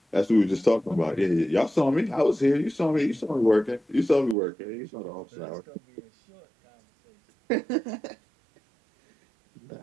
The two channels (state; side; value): drops out; left; at 4.4 s